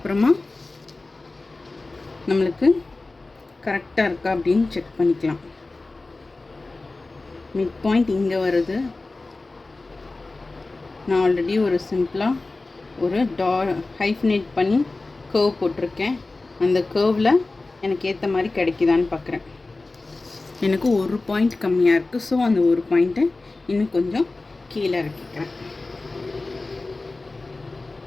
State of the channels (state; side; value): quieter; right; 3.3 dB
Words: நம்மளுக்கு கரெக்டாக இருக்கா அப்படின்னு செக் பண்ணிக்கலாம். மிட் பாயிண்ட் இங்கே வருது. நான் ஆல்ரெடி ஒரு சிம்பிளாக ஒரு ஹைஃபனேட் பண்ணி கர்வ் போட்டிருக்கேன். அந்த கர்வில் எனக்கு ஏற்ற மாதிரி கிடைக்குதான்னு பார்க்குறேன். எனக்கு ஒரு பாயிண்ட் கம்மியாக இருக்குது. ஸோ அந்த ஒரு பாயிண்ட்டை இன்னும் கொஞ்சம் கீழே இறக்கிக்கிறேன்.